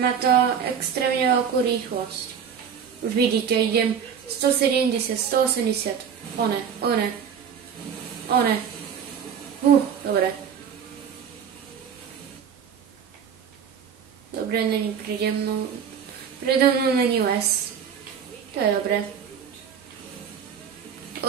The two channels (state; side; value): quieter; left; 7.6 dB